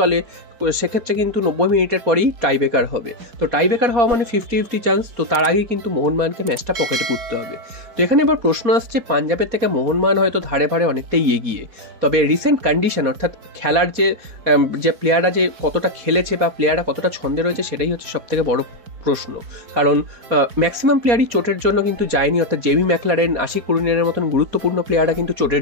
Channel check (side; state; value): left; late; 4.2 ms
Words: সেক্ষেত্রে কিন্তু 90 মিনিটের পরেই টাইব্রেকার হবে। তো টাইব্রেকার হওয়া মানে 50-50 চান্স। তো তার আগেই কিন্তু মোহনবাগানকে ম্যাচটা পকেটে পুরতে হবে। তো এখানে এবার প্রশ্ন আসছে, পাঞ্জাবের থেকে মোহনবাগান হয়তো ধারে ভারে অনেকটাই এগিয়ে, তবে রিসেন্ট কন্ডিশন অর্থাৎ খেলার যে প্লেয়াররা যে কতটা খেলেছে বা প্লেয়াররা কতটা ছন্দে রয়েছে সেটাই হচ্ছে সবথেকে বড় প্রশ্ন। কারণ ম্যাক্সিমাম প্লেয়ারই চোটের জন্য কিন্তু যায়নি, অর্থাৎ জেমি ম্যাকলারেন, আশিক কুরিনের মতন গুরুত্বপূর্ণ প্লেয়াররা কিন্তু